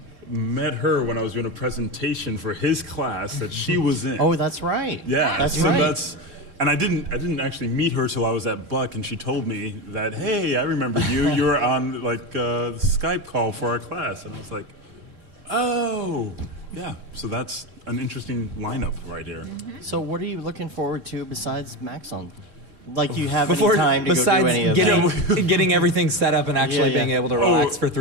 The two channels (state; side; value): late; left; 4.1 ms